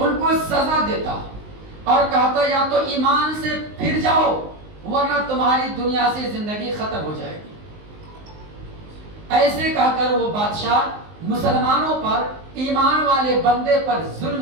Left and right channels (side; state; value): left; late; 19 ms